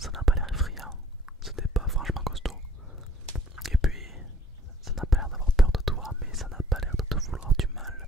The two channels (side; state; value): both; normal; correlation 0.61